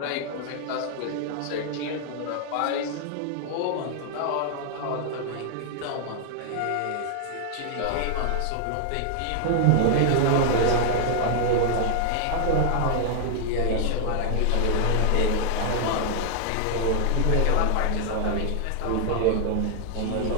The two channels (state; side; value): different; both; correlation 0.00